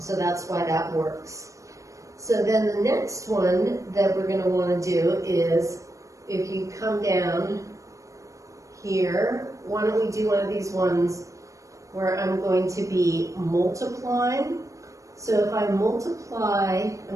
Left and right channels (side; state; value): left; late; 0.15 ms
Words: that's why that works. So then the next one that we're going to want to do is, if you come down here, why don't we do one of these ones where I'm going to be multiplying. So if I multiply,